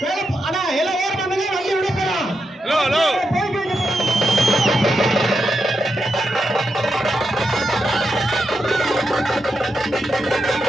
அண்ணா எல்லாம் ஏற பண்ணுங்க. வண்டி விட போறோம்.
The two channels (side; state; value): both; normal; correlation 0.85